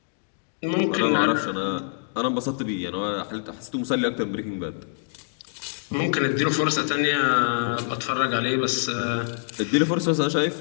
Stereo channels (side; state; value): right; silent; digital silence